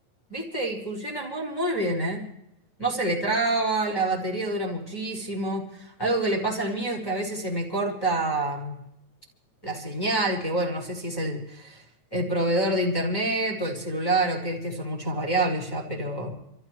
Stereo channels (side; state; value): right; late; 9.2 ms